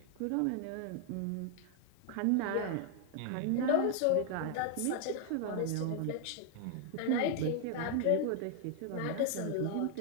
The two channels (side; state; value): both; different; correlation 0.00